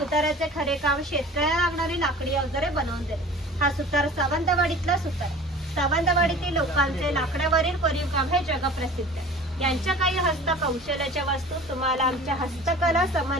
खरे काम शेतकऱ्याला लागणारी लाकडी अवजारे बनवून देणे. हा सुतार सावंतवाडीतला सुतार. सावंतवाडीतील लोकांचे लाकडावरील कोरीव काम हे जगप्रसिद्ध आहे. यांच्या काही हस्तकौशल्याच्या वस्तू तुम्हाला आमच्या हस्तकला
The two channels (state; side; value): normal; both; correlation 0.42